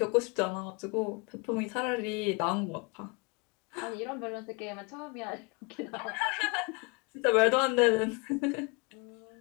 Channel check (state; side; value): quieter; right; 30.8 dB